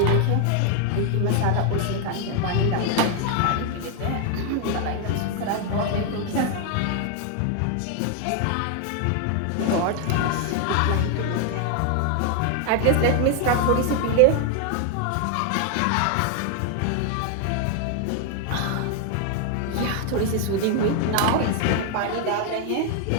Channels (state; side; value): different; both; correlation 0.00